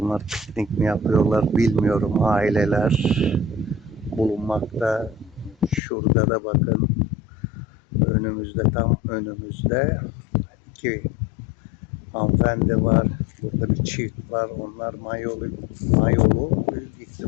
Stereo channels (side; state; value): right; drops out; at 5.8 s